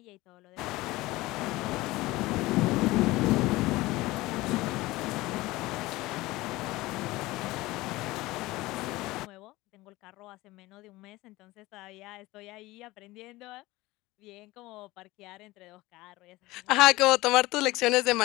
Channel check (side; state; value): right; quieter; 19.4 dB